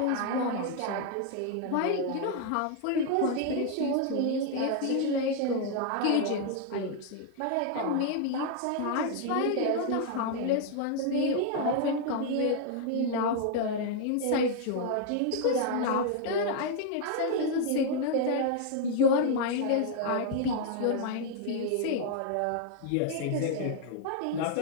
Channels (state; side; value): different; both; correlation 0.00